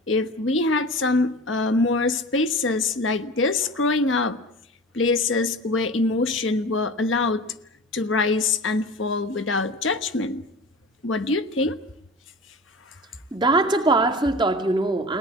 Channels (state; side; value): normal; both; correlation 0.35